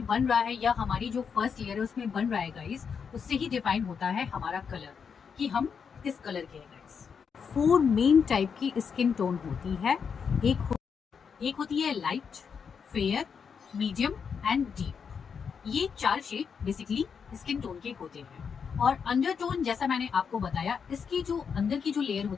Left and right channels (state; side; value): quieter; right; 6.4 dB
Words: बन रहा है या हमारी जो फर्स्ट लेयर है उसमें बन रहा है गाइस, उससे ही डिफाइन होता है हमारा कलर कि हम किस कलर के हैं गाइस। 4 मेन टाइप की स्किन टोन होती है। एक होती है light, fair, medium and deep. ये 4 शेड बेसिकली स्किन टोन के होते हैं। और अंडरटोन जैसा मैंने आपको बताया, इसकी जो अंदर की जो लेयर